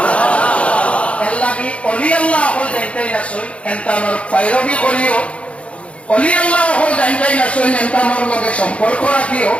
আল্লাহ কি অলি আল্লাহ হল যাইতেই আসল হেনতানোর পায়রবি করিও অলি আল্লাহ হল যাইতেই আসল হেনতানোর লগে সম্পর্ক রাখিও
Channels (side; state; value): right; late; 0.062 ms